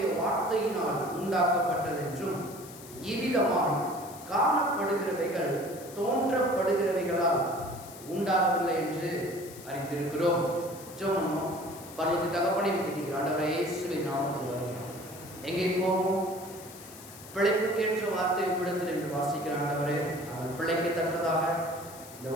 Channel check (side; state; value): left; noise; hiss, 17 dB below the sound